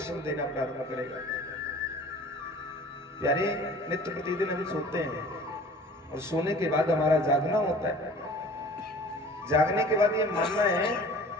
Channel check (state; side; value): normal; both; correlation 0.46